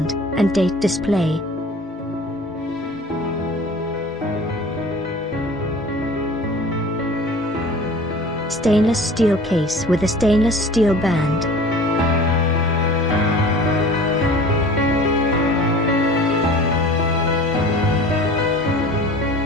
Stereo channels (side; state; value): both; normal; correlation 0.43